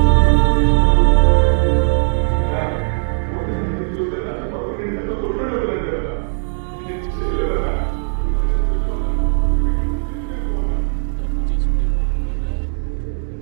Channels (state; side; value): silent; left; digital silence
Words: అన్నా పొద్దున 5ంటికి వస్తే రాత్రి 11 దాకా కొట్లోనే ఉంటున్నాను కదన్నా. నేనేం చేయలేదన్నా. నువ్వైనా చెప్పన్నా, చెప్పి ఇక్కడి నుంచి తీసుకెళ్ళిపోన్నా. తప్పు చేసుంటే ఒప్పుకోండిరా.